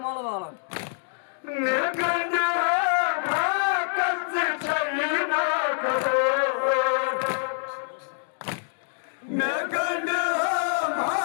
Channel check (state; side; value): silent; right; digital silence